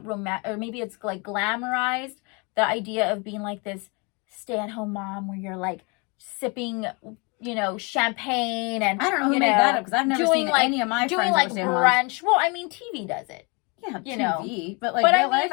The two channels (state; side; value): quieter; right; 30.8 dB